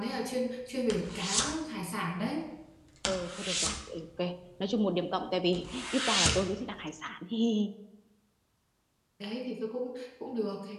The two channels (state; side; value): identical; both; correlation 1.00